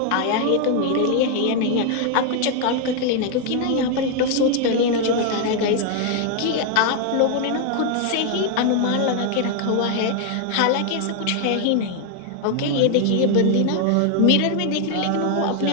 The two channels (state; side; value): different; both; correlation 0.00